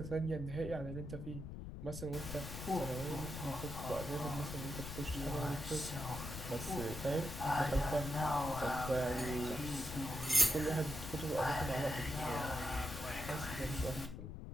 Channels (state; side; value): noise; left; rumble, 8 dB below the sound